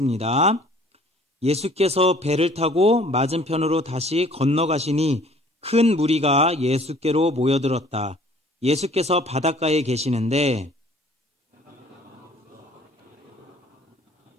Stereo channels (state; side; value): normal; both; correlation 0.54